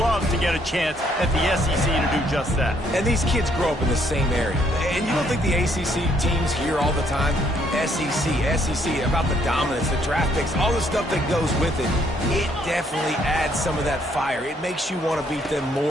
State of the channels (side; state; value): both; normal; correlation 0.68